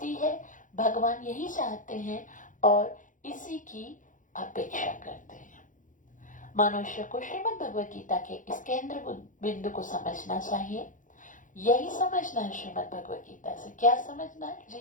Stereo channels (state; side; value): late; right; 0.38 ms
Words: है। भगवान यही चाहते हैं और इसी की अपेक्षा करते हैं। मनुष्य को श्रीमद् भगवद गीता के इस केंद्र बिंदु को समझना चाहिए। यही समझना है श्रीमद् भगवद गीता से। क्या समझना है?